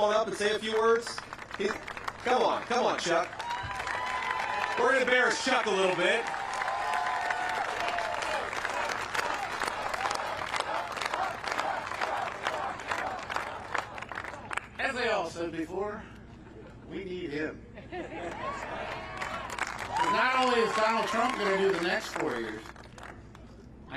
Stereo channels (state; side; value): identical; both; correlation 1.00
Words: up and say a few words? Come on, Chuck. We're going to embarrass Chuck a little bit. As I all said before, we need him. Not only is Donald Trump going to do the next 4 years,